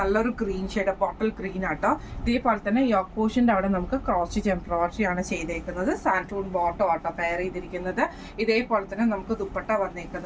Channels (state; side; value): identical; both; correlation 1.00